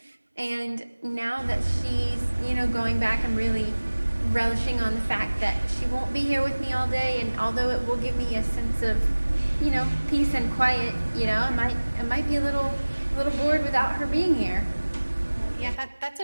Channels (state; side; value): inverted; both; correlation -1.00